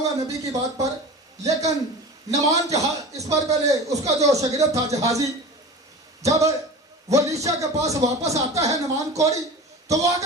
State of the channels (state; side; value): normal; both; correlation 0.34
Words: नबी की बात पर, लेकिन नुमान जहाज, इस पर पहले उसका जो शागिर्द था जहाजी, जब वो अलीशा के पास वापस आता है नुमान कोड़ी, तो वो